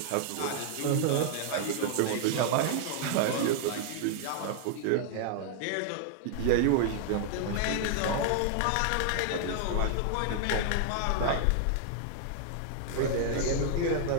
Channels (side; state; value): both; different; correlation -0.01